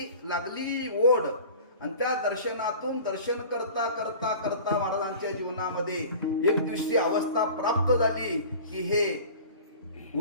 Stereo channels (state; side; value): inverted; both; correlation -0.41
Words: लागली ओढ, आणि त्या दर्शनातून दर्शन करता करता करता महाराजांच्या जीवनामध्ये एक दिवशी अवस्था प्राप्त झाली की हे